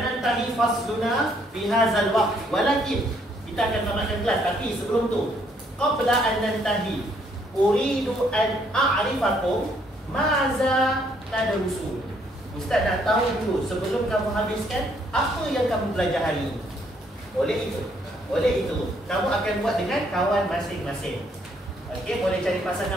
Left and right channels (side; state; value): both; normal; correlation 0.68